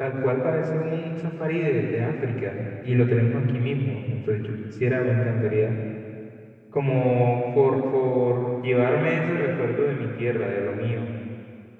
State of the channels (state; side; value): identical; both; correlation 1.00